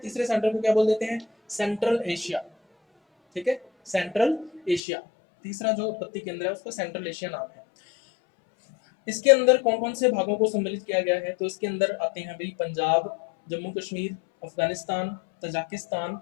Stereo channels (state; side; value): drops out; right; at 4.8 s